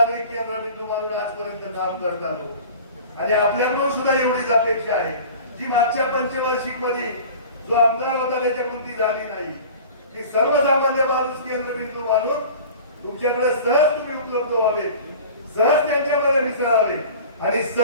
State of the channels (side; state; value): both; inverted; correlation -0.41